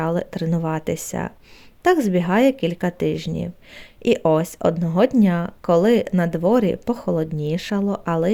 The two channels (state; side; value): identical; both; correlation 1.00